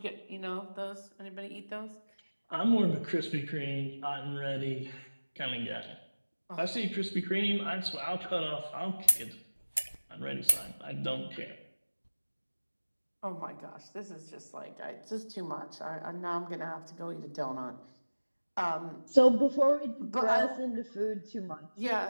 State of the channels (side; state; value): both; inverted; correlation -1.00